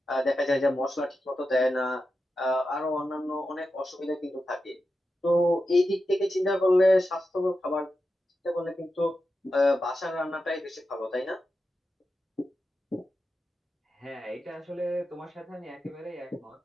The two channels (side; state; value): both; normal; correlation 0.90